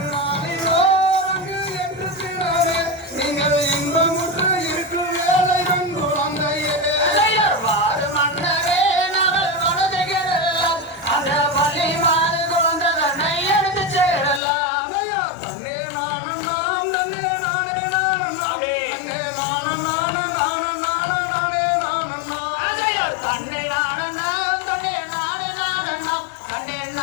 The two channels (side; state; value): right; drops out; at 14.4 s